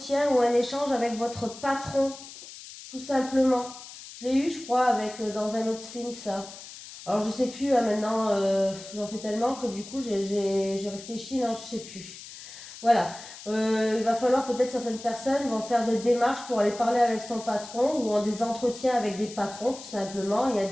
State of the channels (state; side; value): noise; left; hiss, 15 dB below the sound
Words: ou un échange avec votre patron, tout simplement. Je l'ai eu, je crois, avec dans un autre film, ça. Alors, je sais plus, maintenant, j'en fais tellement que du coup, j'ai réfléchi, non, je sais plus. Voilà. Il va falloir peut-être certaines personnes vont faire des démarches pour aller parler avec son patron ou en des entretiens avec des patrons, tout simplement. Il y a